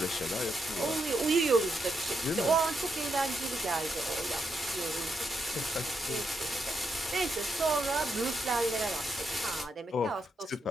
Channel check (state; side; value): normal; both; correlation 0.81